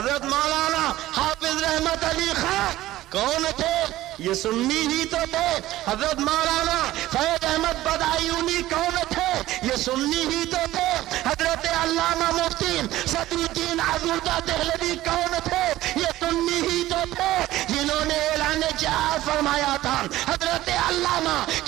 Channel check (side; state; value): left; quieter; 15.7 dB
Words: مولانا حافظ رحمت علی خان کون تھے؟ یہ سنی ہی تو تھے۔ حضرت مولانا فیض احمد بدایونی کون تھے؟ یہ سنی ہی تو تھے۔ حضرت علامہ مفتی صدر الدین آزردہ دہلوی کون تھے؟ یہ سنی ہی تو تھے جنہوں نے اعلان جہاد فرمایا تھا۔ حضرت علامہ